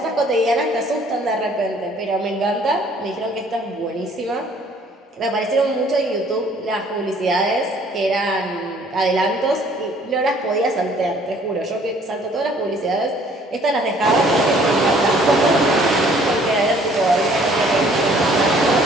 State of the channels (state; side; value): normal; both; correlation 0.58